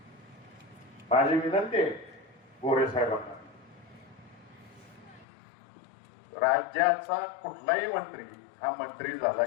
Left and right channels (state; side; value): drops out; right; at 5.2 s